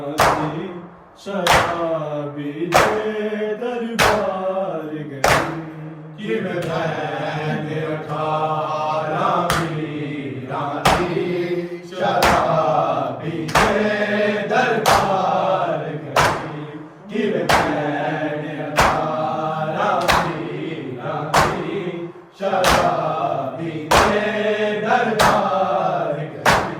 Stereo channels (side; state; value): both; identical; correlation 1.00